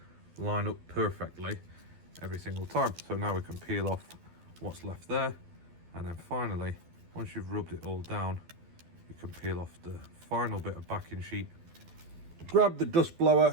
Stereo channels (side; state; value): left; late; 12 ms